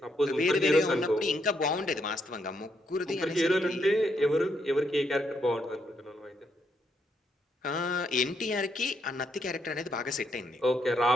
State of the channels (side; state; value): both; normal; correlation 0.76